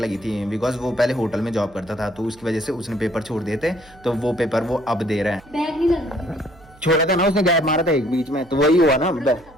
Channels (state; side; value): noise; right; hum, 25 dB below the sound